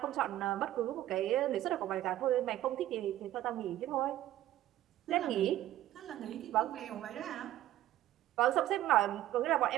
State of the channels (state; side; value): quieter; left; 13.7 dB